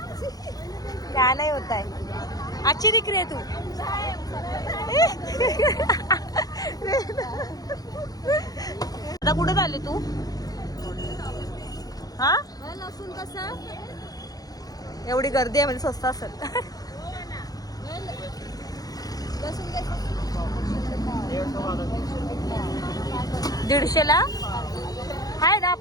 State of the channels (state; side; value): late; right; 0.18 ms